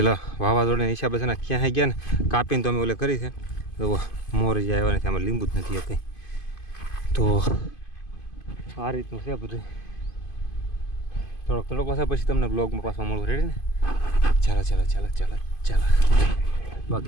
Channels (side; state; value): right; late; 2.5 ms